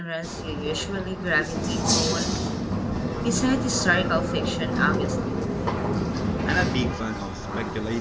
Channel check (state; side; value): identical; both; correlation 1.00